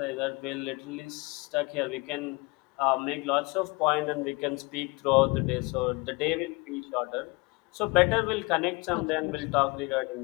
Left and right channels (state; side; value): quieter; right; 26.2 dB